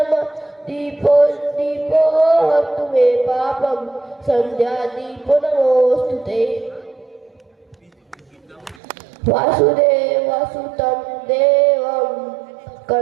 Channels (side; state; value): left; drops out; at 8.8 s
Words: दीपो हरतु मे पापं सन्ध्यादीपो नमोस्तुते वासुदेवसुतं देवं